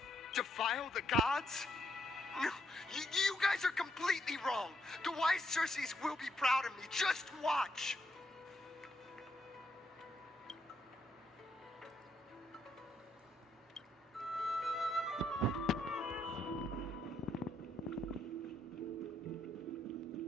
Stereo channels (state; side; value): normal; both; correlation 0.75